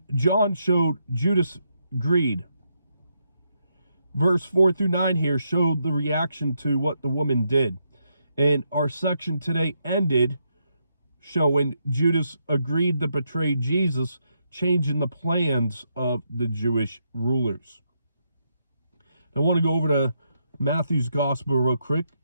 John showed Judas' greed. Verse 4 through 9 here showed the reaction to what the woman did. And our section today ended showing Judas agreed to betray Jesus, changing the plans of the Jewish rulers. I want to go over to Matthew's gospel real quick.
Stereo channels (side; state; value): both; inverted; correlation -0.80